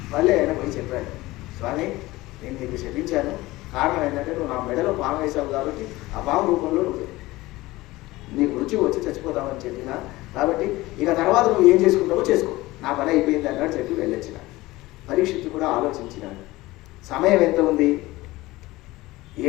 మళ్ళీ ఆయన పోయి చెప్పాడు, స్వామి నేను నీకు శపించాను, కారణం ఏంటంటే నువ్వు నా మెడలో పాము వేసావు కాబట్టి ఆ పాము రూపంలో నువ్వు నీకు రుచి వచ్చి చచ్చిపోతామని చెప్పినా, కాబట్టి ఇక తర్వాత నువ్వు ఏం చేసుకుంటావో చేసుకో, నా పని అయిపోయింది అన్నాడు. చెప్పి వెళ్ళొచ్చిన. పరీక్షిత్తు కూడా ఆలోచించినాడు. సమయం ఎంత ఉంది?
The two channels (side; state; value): right; quieter; 19.2 dB